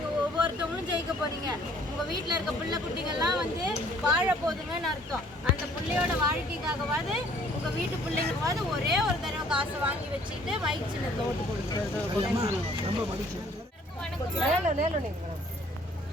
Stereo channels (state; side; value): normal; both; correlation 0.58